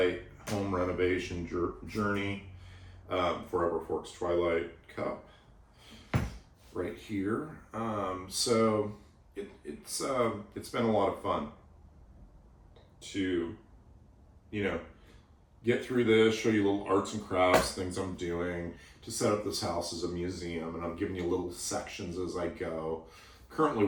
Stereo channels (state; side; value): identical; both; correlation 1.00